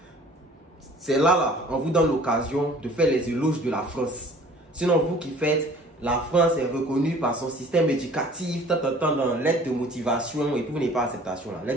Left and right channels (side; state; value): both; normal; correlation 0.50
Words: C'est là, on vous donne l'occasion de faire les éloges de la France. Sinon, vous qui faites, la France est reconnue par son système éducatif, dans l'aide de motivation, et puis vous n'avez pas acceptation là.